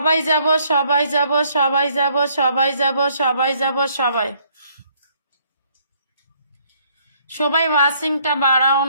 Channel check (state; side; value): inverted; both; correlation -0.66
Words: যাব সবাই যাব সবাই যাব সবাই যাব সবাই যাব সবাই সবাই ওয়াচিংটা বাড়াও